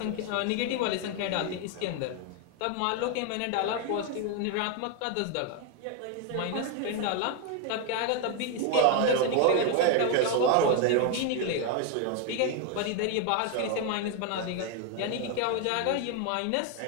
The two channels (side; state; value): both; different; correlation 0.01